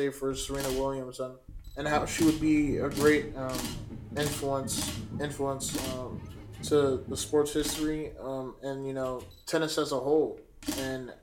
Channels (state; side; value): identical; both; correlation 1.00